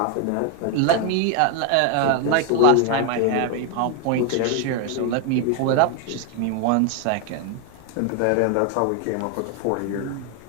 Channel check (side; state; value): both; different; correlation 0.01